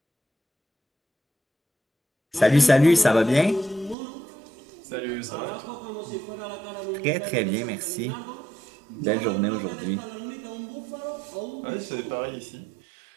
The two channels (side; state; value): left; drops out; at 4.0 s